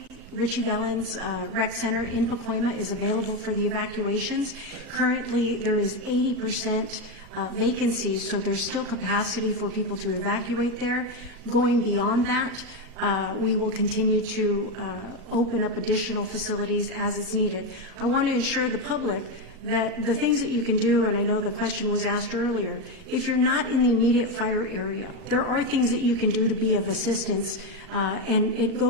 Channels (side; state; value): left; late; 8.0 ms